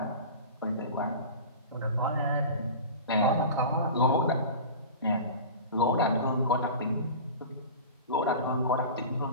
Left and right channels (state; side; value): inverted; both; correlation -0.34